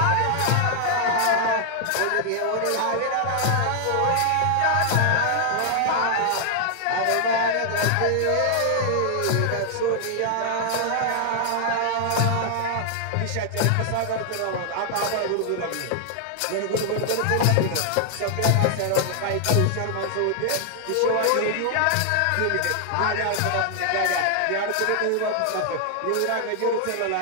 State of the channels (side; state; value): both; different; correlation 0.00